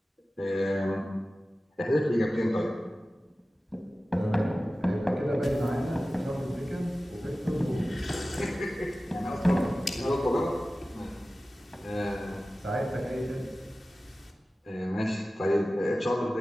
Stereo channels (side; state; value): both; normal; correlation 0.96